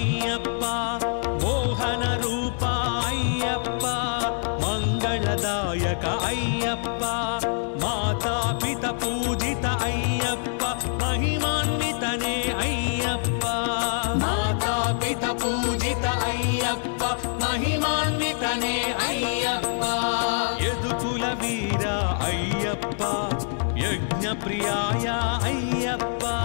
మోహన రూప అయ్యప్ప మంగళదాయక అయ్యప్ప మాతాపిత పూజిత అయ్యప్ప మహిమాన్వితనే అయ్యప్ప మాతాపిత పూజిత అయ్యప్ప మహిమాన్వితనే అయ్యప్ప యదుకుల వీర అయ్యప్ప యజ్ఞ ప్రియాయ అయ్యప్ప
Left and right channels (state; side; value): silent; right; digital silence